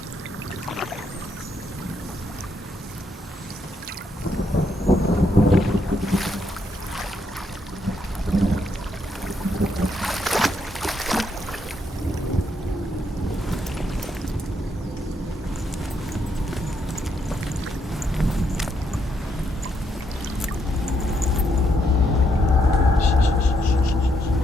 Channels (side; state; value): both; normal; correlation 0.76